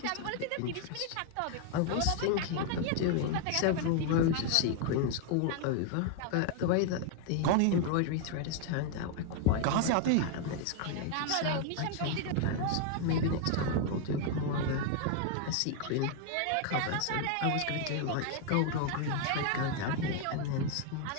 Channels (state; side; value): different; both; correlation 0.00